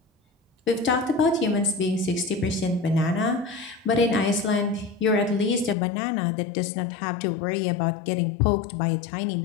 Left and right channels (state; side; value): drops out; right; at 5.8 s